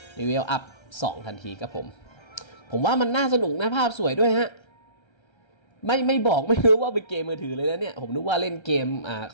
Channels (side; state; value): right; late; 1.3 ms